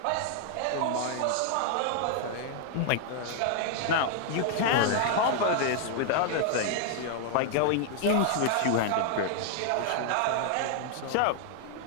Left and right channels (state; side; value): different; both; correlation 0.00